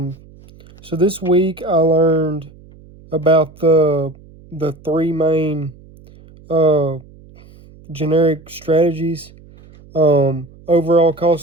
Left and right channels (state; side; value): noise; right; hum, 24 dB below the sound